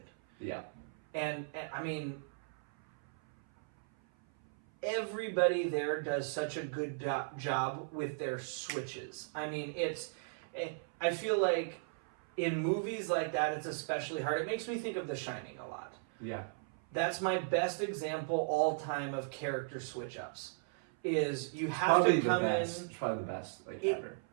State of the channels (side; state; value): left; silent; 54 dB below the other